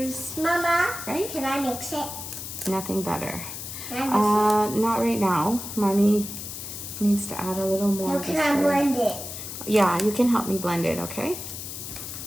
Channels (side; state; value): left; noise; hiss, 8 dB below the sound